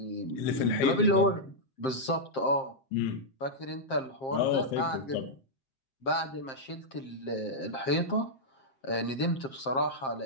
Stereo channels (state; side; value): late; right; 7.6 ms